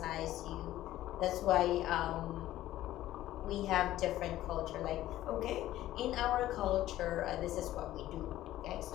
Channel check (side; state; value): right; quieter; 14.3 dB